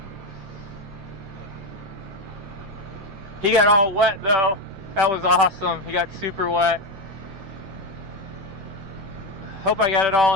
He got all wet though. That was awesome. He got super wet. Hope I got it all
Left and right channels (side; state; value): left; late; 10 ms